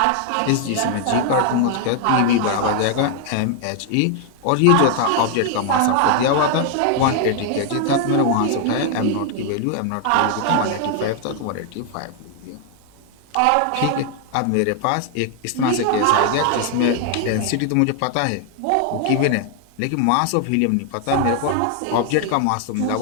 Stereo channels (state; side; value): different; both; correlation 0.00